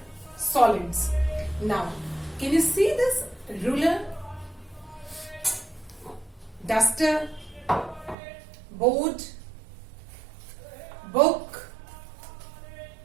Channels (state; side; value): drops out; left; at 8.2 s